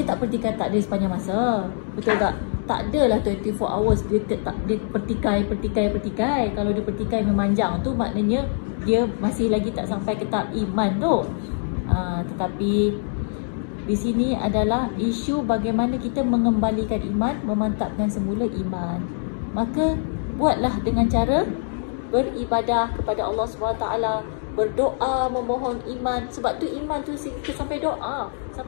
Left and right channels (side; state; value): right; silent; digital silence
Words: tak pertikaikan takdir sepanjang masa. Betul tak? Tak adalah 24 hours dia pertikai. Kalau dia pertikai memanjang tu, maknanya dia masih lagi tak sampai ke tahap iman tu. Tetapi di sini adalah isu bagaimana kita mengembalikan iman, memantapkan semula iman. Maka buatlah dengan cara beribadah kepada Allah SWT, berdoa, memohon iman. Sebab tu iman tu kita sampai doa,